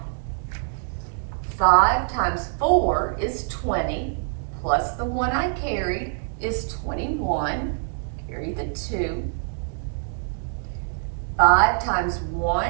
5 times 4 is 20, plus the 1 I carried is 21. Carry the 2. 5 times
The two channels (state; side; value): silent; left; digital silence